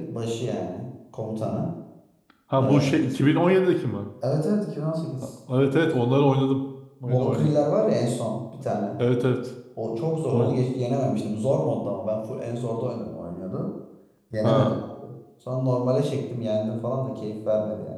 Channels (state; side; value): identical; both; correlation 1.00